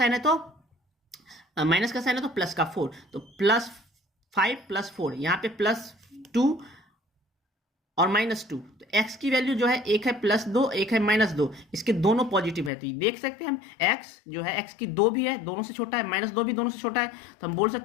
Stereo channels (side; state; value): right; drops out; at 12.7 s